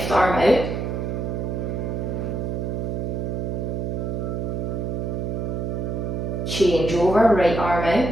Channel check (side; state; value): right; noise; hum, 2 dB below the sound